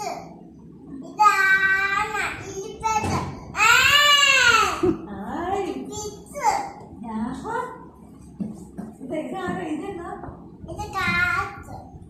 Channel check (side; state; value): both; identical; correlation 1.00